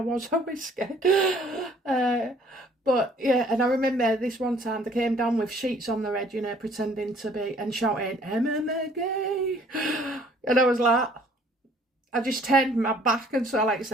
was always scared. But yeah, and I remember this one time they came down with sheets on their head, pretending to be, and shouting, Emma McGee. And I was like, I just turned my back and so like I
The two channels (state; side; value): normal; both; correlation 0.58